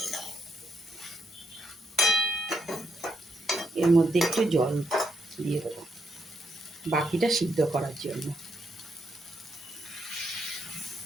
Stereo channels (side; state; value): both; normal; correlation 0.78